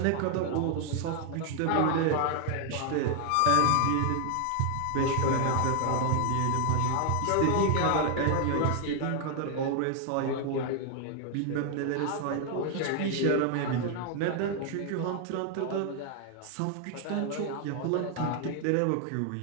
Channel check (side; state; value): both; different; correlation 0.00